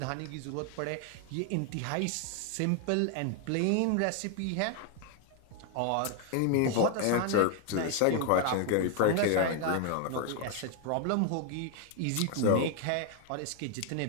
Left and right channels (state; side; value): different; both; correlation 0.00